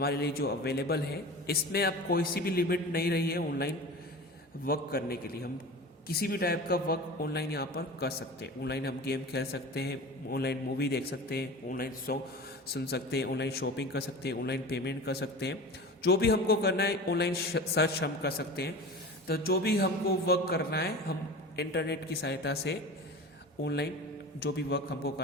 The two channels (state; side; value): normal; both; correlation 0.33